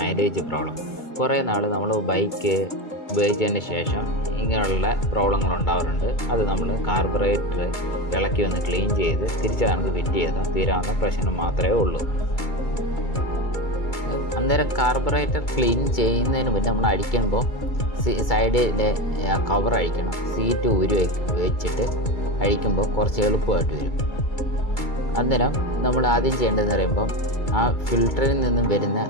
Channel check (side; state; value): right; late; 2.3 ms